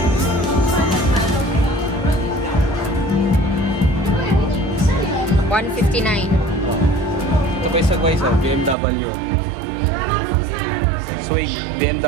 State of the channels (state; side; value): drops out; left; at 8.8 s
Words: $159. Ito pa isa guys, BMW. Swing,